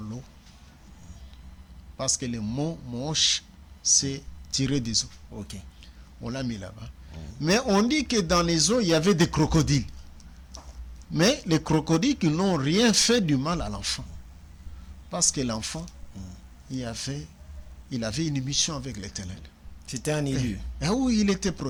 l'eau. Parce que le mot moche, c'est tirer des eaux. Ok. On l'a mis là-bas. Mais on dit que dans les eaux, il y avait des crocodiles. Mais les crocodiles qui n'ont rien fait du mal à l'enfant. Parce que l'enfant, il avait une mission avec l'Éternel. C'était un élu. Et où il était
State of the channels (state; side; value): identical; both; correlation 1.00